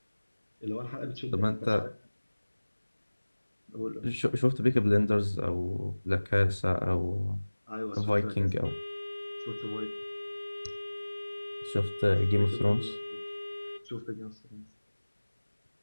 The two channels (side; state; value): both; inverted; correlation -1.00